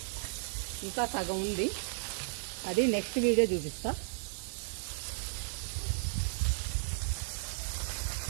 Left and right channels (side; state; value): left; silent; digital silence